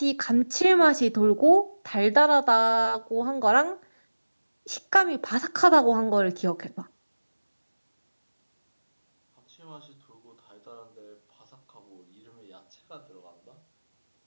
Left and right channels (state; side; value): inverted; both; correlation -1.00